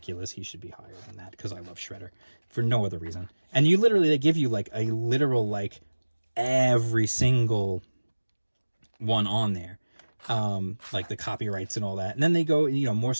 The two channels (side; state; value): both; inverted; correlation -1.00